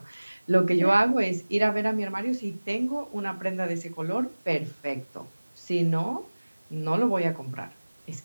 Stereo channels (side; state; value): both; inverted; correlation -1.00